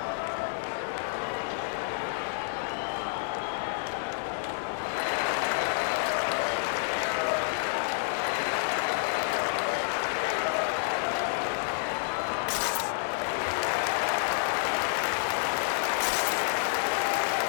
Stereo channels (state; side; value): silent; right; 58 dB below the other